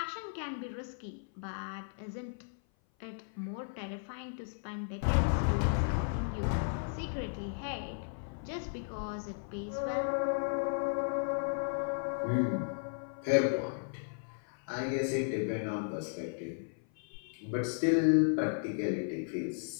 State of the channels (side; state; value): right; silent; 54 dB below the other